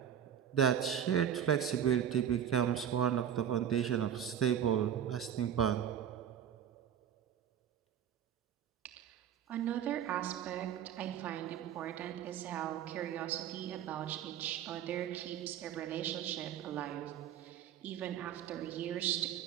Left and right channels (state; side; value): quieter; left; 9.3 dB